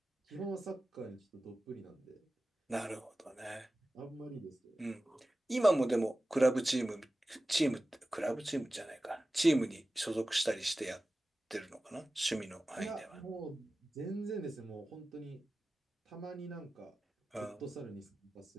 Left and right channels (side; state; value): both; normal; correlation 0.95